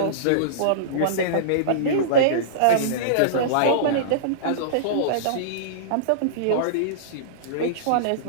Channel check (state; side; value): different; both; correlation -0.04